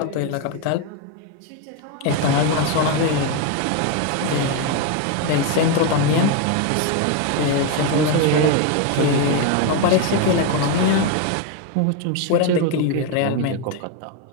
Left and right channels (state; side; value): different; both; correlation 0.02